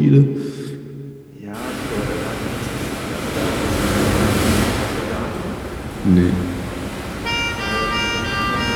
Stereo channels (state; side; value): identical; both; correlation 1.00